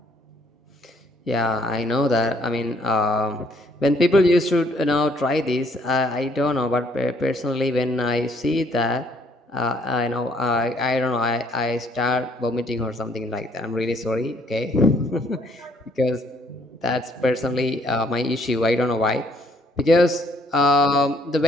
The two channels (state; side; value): normal; both; correlation 0.66